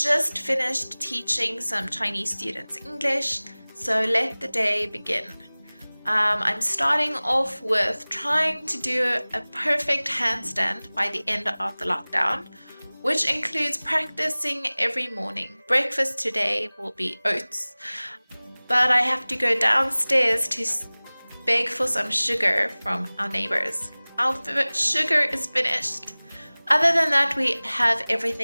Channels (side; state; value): both; inverted; correlation -1.00